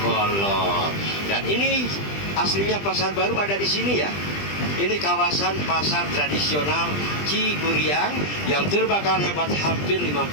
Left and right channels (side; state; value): right; late; 20 ms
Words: Dan ini aslinya Pasar Baru ada di sini ya. Ini kawasan pasar tradisional Ciguriang yang terbakar hebat hampir